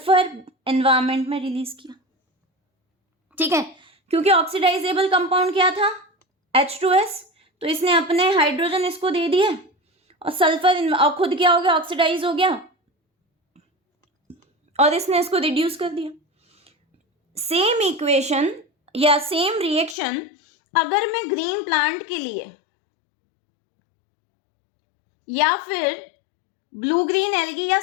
एनवायरमेंट में रिलीज किया, ठीक है। क्योंकि ऑक्सीडाइजेबल कंपाउंड क्या था? H2S, तो इसने अपने हाइड्रोजन इसको दे दिए और सल्फर और खुद क्या हो गया? ऑक्सीडाइज हो गया और इसने इसको रिड्यूस कर दिया। सेम इक्वेशन या सेम रिएक्शन अगर मैं ग्रीन प्लांट के लिए या फिर ब्लू ग्रीन एल्गी या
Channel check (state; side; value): drops out; right; at 20.0 s